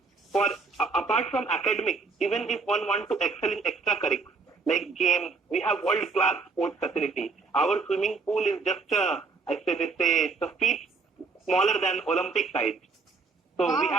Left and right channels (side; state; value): left; quieter; 4.4 dB